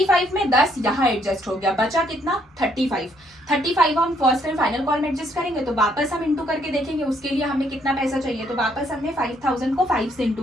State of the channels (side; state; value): both; normal; correlation 0.69